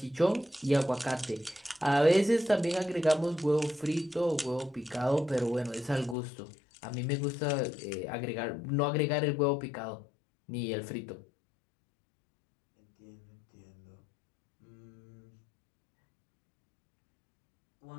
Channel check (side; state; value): right; drops out; at 6.2 s